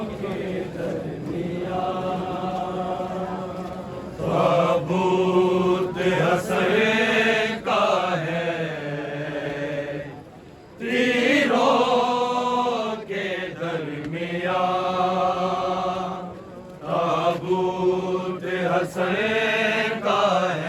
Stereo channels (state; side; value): identical; both; correlation 1.00